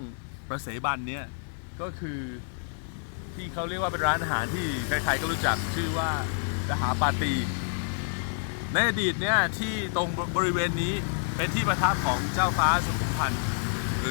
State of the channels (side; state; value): right; silent; digital silence